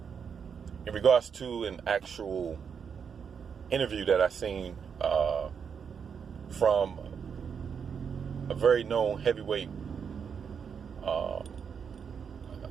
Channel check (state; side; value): quieter; left; 6.8 dB